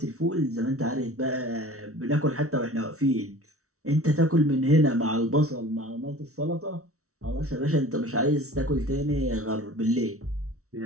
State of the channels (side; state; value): left; late; 0.64 ms